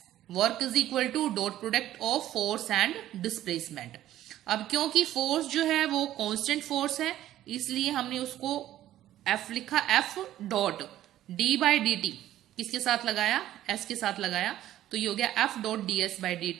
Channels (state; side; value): quieter; left; 13.1 dB